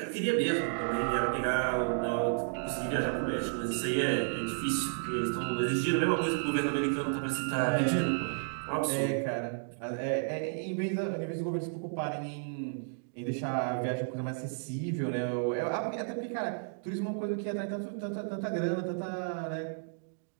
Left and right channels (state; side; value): silent; left; digital silence